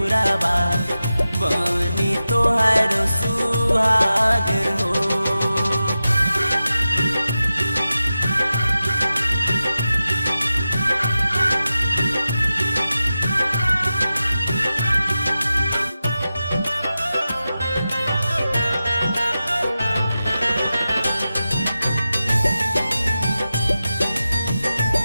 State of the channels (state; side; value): inverted; both; correlation -0.93